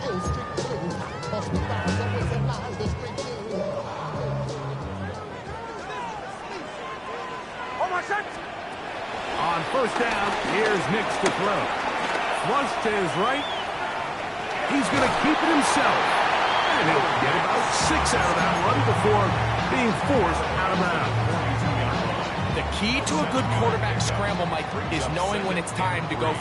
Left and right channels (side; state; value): both; identical; correlation 1.00